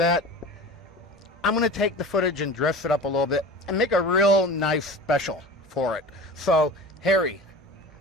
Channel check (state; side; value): normal; both; correlation 0.36